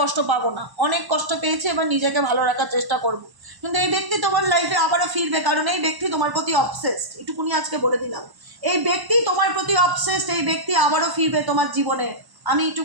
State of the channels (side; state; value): left; late; 1.0 ms